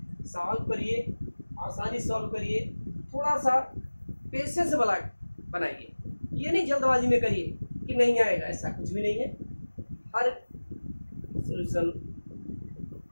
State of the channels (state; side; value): inverted; both; correlation -1.00